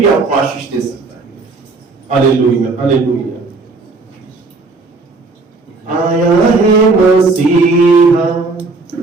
आपको आशीष दे सकता है। Hallelujah, hallelujah. आया है मसीहा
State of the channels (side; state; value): left; quieter; 3.7 dB